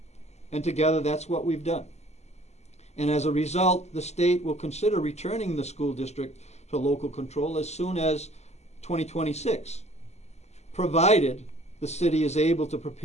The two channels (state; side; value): late; right; 0.32 ms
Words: And together, that's what we've done. And as a result, the state will consider returning the school district to local control as soon as 2026, provided the city is able to